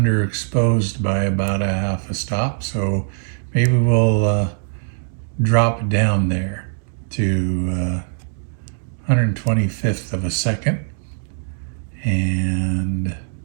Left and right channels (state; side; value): silent; left; digital silence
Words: by about a half a stop, so maybe we'll drop down there to 125th of a second. And